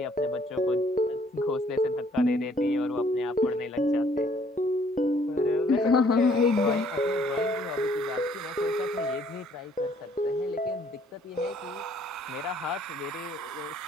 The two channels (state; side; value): normal; both; correlation 0.62